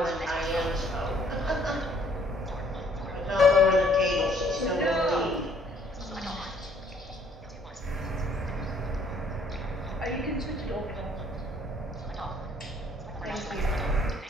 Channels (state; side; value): normal; both; correlation 0.62